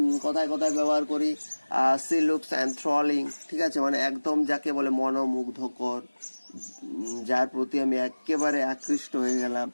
কথায় ব্যবহার করি। সি লুকস অ্যান্থ্রলিং, ঠিক আছে, মানে একদম যাকে বলে মনোমুগ্ধকর, যার প্রতি আমি একেবারে আকৃষ্ট হয়ে গেলাম,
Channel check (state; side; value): inverted; both; correlation -1.00